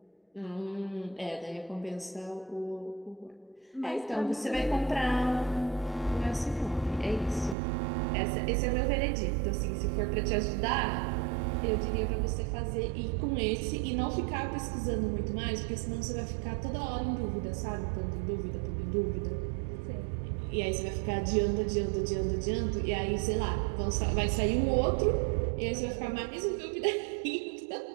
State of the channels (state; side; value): drops out; left; at 7.6 s